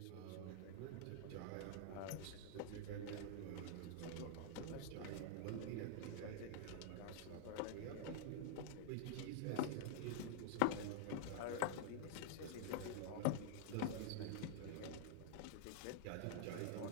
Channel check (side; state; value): both; different; correlation -0.01